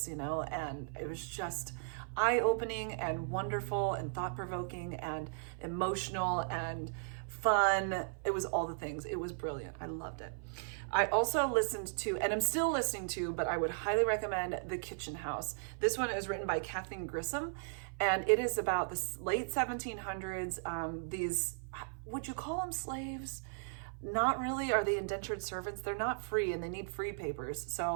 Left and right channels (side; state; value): left; silent; 53 dB below the other